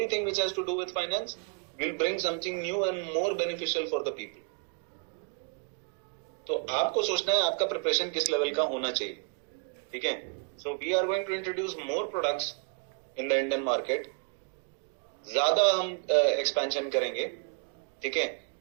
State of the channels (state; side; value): quieter; left; 36.2 dB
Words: which has to do with finance will bring something new and more beneficial for the people. तो आपको सोचना है आपका प्रिपरेशन किस लेवल का होना चाहिए, ठीक है। So we are going to introduce more products in the Indian market, ज्यादा हम एक्सपेंशन करेंगे, ठीक है।